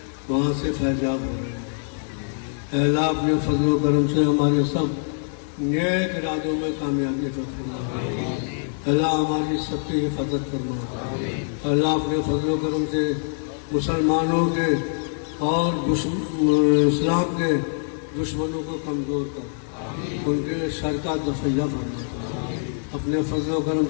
वहाँ से फैजाब हो रहे हैं। अल्लाह अपने फजल करम से हमारे सब नेक इरादों में कामयाबी अता फरमा। अल्लाह हमारी सबकी हिफाजत फरमा। अल्लाह अपने फजल करम से मुसलमानों के और इस्लाम के दुश्मनों को कमज़ोर कर उनके शर का दफ़ैया फरमा। अपने फजल करम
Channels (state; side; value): silent; right; digital silence